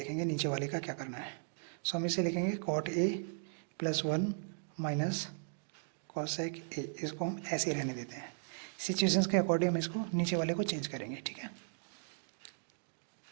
नीचे वाले का क्या करना है। सो हम इसे लिखेंगे cot A +1 minus cosec A, इसको हम ऐसे ही रहने देते हैं, सिचुएशंस के अकॉर्डिंग हम इसको नीचे वाले को चेंज करेंगे, ठीक है।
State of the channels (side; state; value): left; silent; digital silence